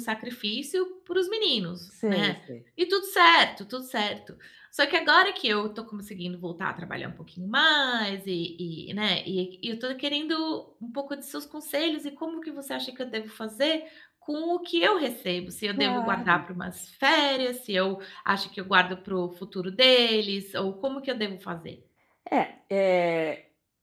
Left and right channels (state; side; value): identical; both; correlation 1.00